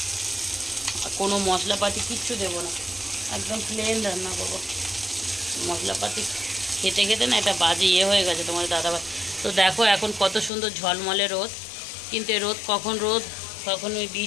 আর কোনো মশলাপাতি কিচ্ছু দেবো না, একদম প্লেন রান্না করবো। মশলাপাতি খেতে না এটা বাজে হয়ে গেছে তোমাদের দাদাভাই। তো দেখো এখন কত সুন্দর ঝলমলে রোদ, কিন্তু এই রোদ কখন ওই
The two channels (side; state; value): right; drops out; at 10.5 s